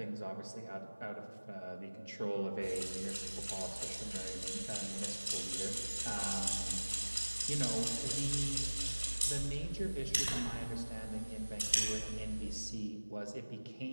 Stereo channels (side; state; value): both; inverted; correlation -1.00